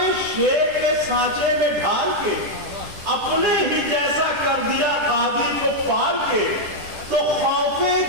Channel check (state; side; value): late; left; 10 ms